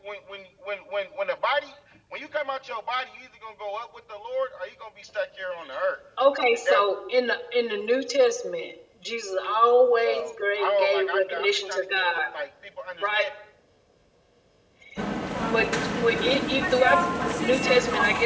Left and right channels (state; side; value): identical; both; correlation 1.00